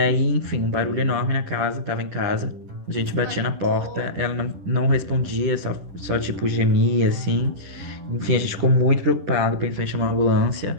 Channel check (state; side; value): late; left; 11 ms